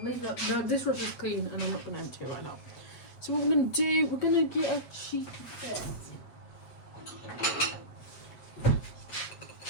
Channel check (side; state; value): right; late; 8.3 ms